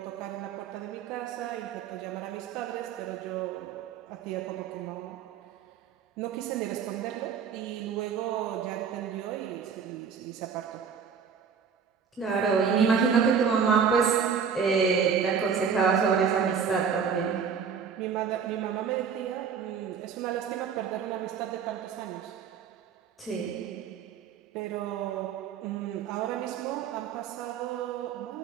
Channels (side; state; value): left; quieter; 6.7 dB